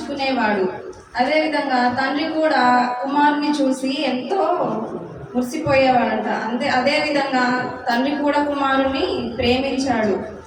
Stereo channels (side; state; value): both; identical; correlation 1.00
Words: అదేవిధంగా తండ్రి కూడా కుమారుని చూసి ఎంతో మురిసిపోయేవాడంట. అదేవిధంగా తండ్రి కూడా కుమారుని ప్రేమించాడు.